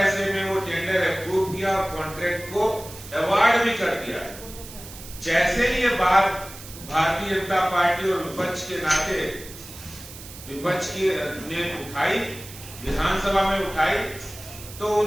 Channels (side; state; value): right; noise; hiss, 15 dB below the sound